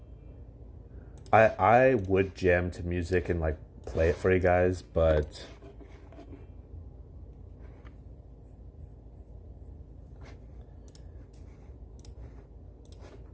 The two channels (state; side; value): identical; both; correlation 1.00